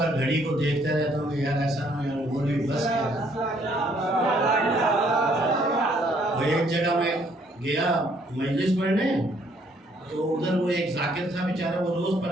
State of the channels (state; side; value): normal; both; correlation 0.66